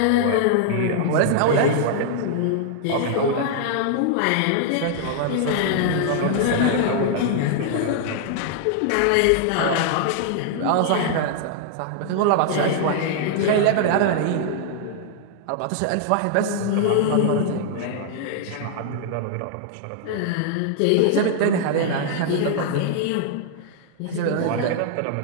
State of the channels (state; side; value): different; both; correlation -0.01